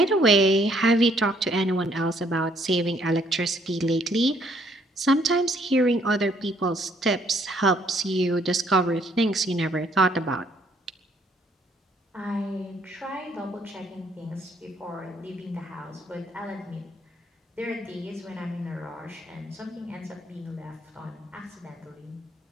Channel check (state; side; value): normal; both; correlation 0.66